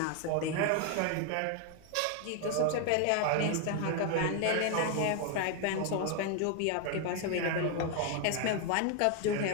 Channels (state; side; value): different; both; correlation 0.01